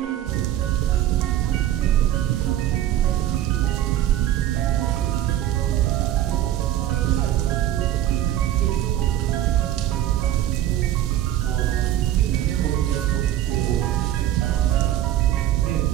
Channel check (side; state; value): left; quieter; 12.3 dB